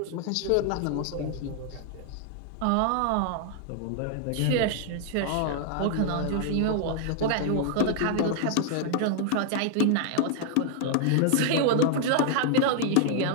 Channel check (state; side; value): different; both; correlation 0.00